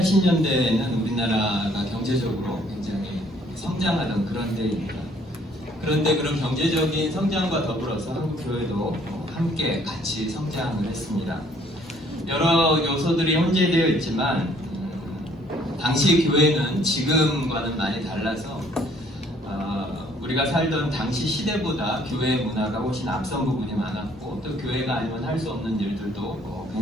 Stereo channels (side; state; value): both; normal; correlation 0.62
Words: 우리나라가 경제적으로 굉장히 성장하던 그런 때입니다. 그런데 그런 경제적인 성장과 더불어서 한국교회도 함께 같이 성장을 했습니다. 여러 요소들이 혼재되어 있지만 당시 교회는 지금과는 많이 달라서 우리가 살던 당시 시대보다 교회의 문화가 훨씬 앞선 부분이 많았고 또 교회가 아니면 할 수 없는 일들도